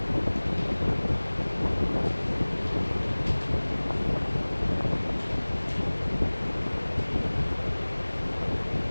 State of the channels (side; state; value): both; inverted; correlation -1.00